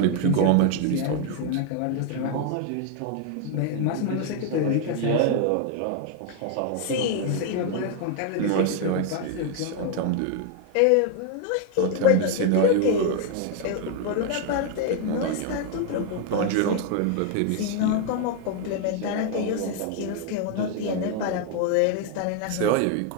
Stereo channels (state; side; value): different; both; correlation 0.00